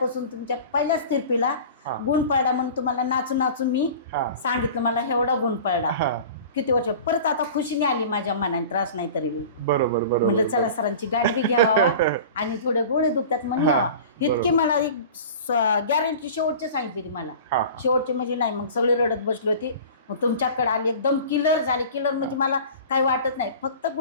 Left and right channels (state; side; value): inverted; both; correlation -0.39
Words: तुमच्या पहिल्याच तिरपीला गुण पडला म्हणून तुम्हाला नाचून नाचून मी सांगितलं, मला एवढा गुण पडला. किती वर्ष परत आता खुशीने आली माझ्या मनाने, त्रास नाही तरी बरोबर म्हणलं चला सरांची गाठ बी घ्यावा आणि थोडे गोळे दुखतात म्हणून यावा. इतकी मला एक गॅरंटी शेवटची सांगितली मला. शेवटची म्हणजे नाही, मग सगळे रडत बसली होती. मग तुमच्याकडे आली, एकदम क्लिअर झाली. क्लिअर म्हणजे मला काही वाटत नाही, फक्त